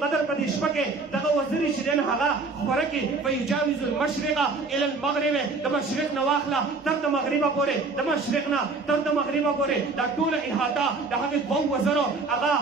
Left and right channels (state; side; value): quieter; left; 3.8 dB